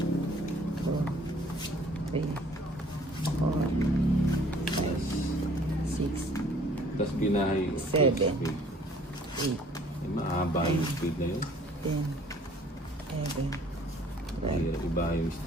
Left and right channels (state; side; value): normal; both; correlation 0.56